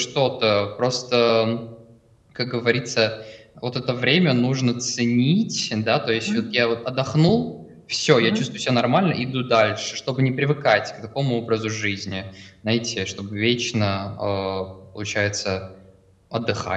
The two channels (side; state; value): both; identical; correlation 1.00